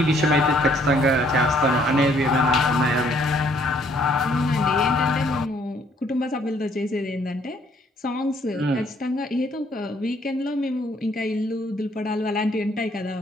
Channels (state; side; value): normal; both; correlation 0.65